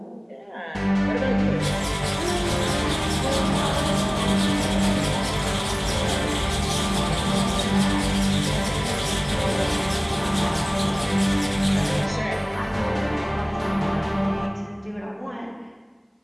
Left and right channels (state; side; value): identical; both; correlation 1.00